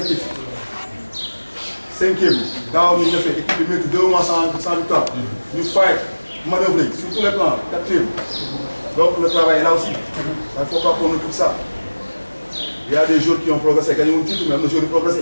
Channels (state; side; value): inverted; both; correlation -1.00